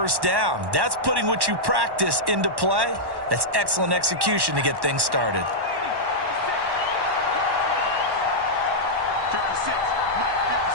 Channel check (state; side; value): late; left; 1.1 ms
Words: down. That's putting what you practice into play. That's excellent execution to get things started. 56. Mike,